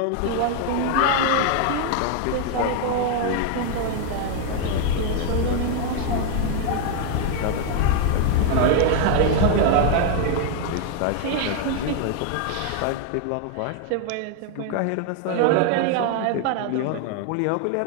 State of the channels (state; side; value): different; both; correlation 0.00